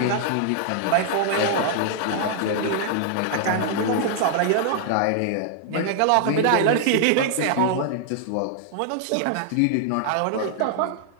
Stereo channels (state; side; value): different; both; correlation 0.00